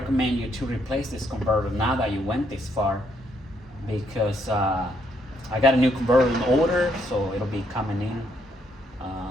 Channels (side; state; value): both; normal; correlation 0.73